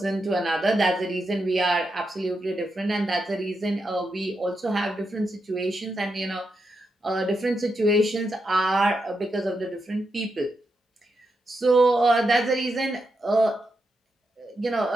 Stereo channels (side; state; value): both; normal; correlation 0.85